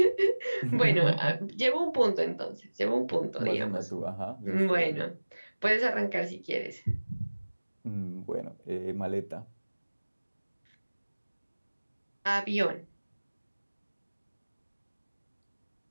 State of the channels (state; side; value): inverted; both; correlation -1.00